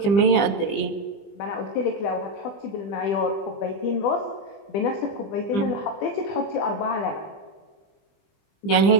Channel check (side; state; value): right; late; 20 ms